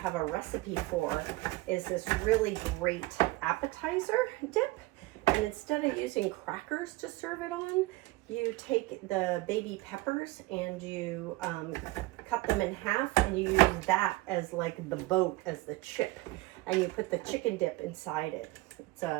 a recipe for is this really great appetizer dip. And instead of using crackers to serve it on, you take the baby peppers and you cut them in half, and you use that as like the boat, as the chip. And you put the chicken dip inside it. It's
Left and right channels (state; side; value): quieter; left; 20.7 dB